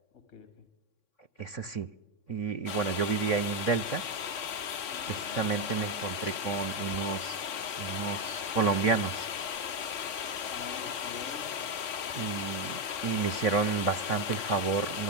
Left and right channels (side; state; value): right; late; 3.6 ms